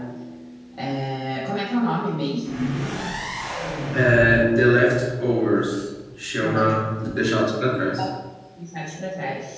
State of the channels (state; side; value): identical; both; correlation 1.00